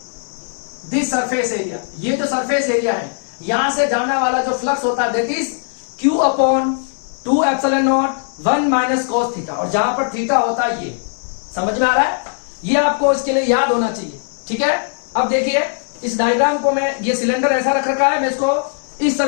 this surface area, ये जो सरफेस एरिया है यहां से जाने वाला जो फ्लक्स होता है that is q upon 2 epsilon naught 1 minus cos theta, और जहां पर थीटा होता है ये, समझ में आ रहा है? ये आपको इसके लिए याद होना चाहिए, ठीक है। अब देखिए इस डायग्राम को मैं, ये सिलेंडर ऐसा रख रखा है, मैं इसको इस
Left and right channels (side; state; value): right; silent; 67 dB below the other